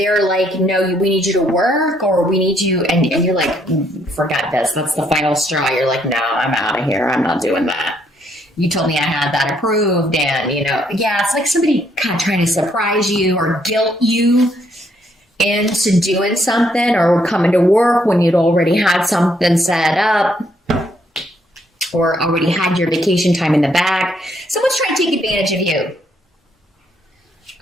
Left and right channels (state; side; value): normal; both; correlation 0.71